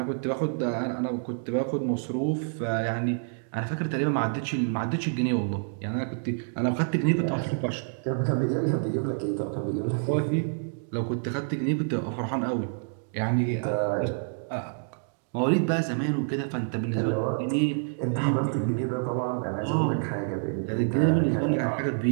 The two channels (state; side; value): silent; left; digital silence